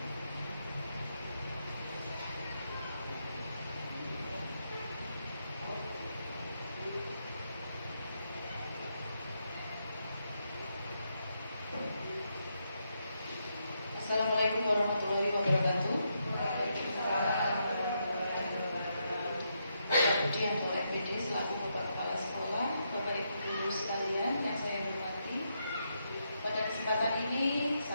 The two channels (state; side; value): inverted; both; correlation -0.81